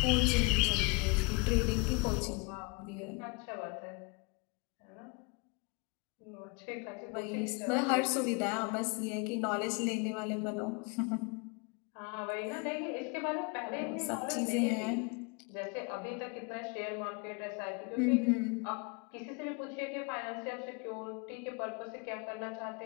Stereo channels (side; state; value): right; quieter; 30.1 dB